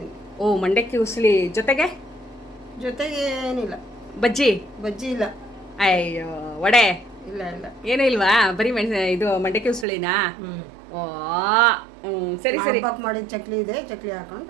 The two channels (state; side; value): drops out; left; at 9.9 s